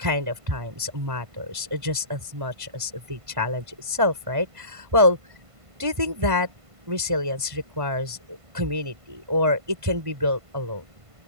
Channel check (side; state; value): left; late; 1.5 ms